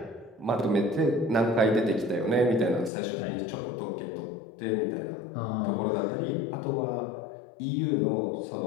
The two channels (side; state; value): right; drops out; at 2.9 s